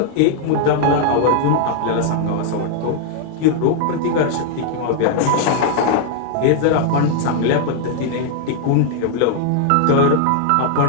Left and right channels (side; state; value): both; different; correlation -0.01